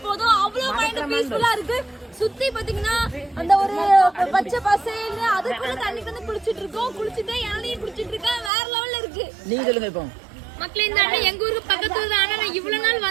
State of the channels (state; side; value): drops out; left; at 8.5 s